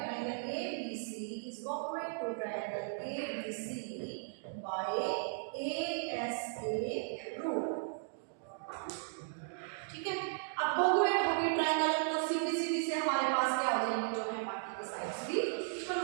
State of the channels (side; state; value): left; silent; digital silence